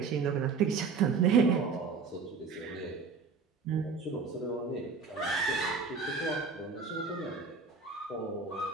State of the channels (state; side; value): quieter; left; 4.9 dB